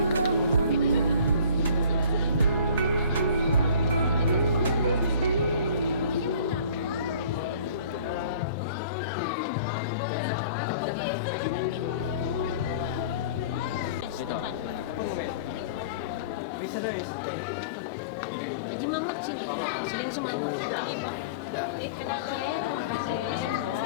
Jadi Mamat sini, sering semangat.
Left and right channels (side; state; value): both; inverted; correlation -0.45